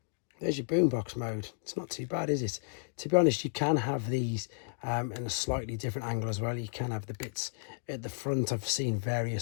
your boombox mode. It's not too bad, is it? To be honest, you can have these in a slightly different angle as well. You can have the bits at the front. I've seen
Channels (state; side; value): silent; right; digital silence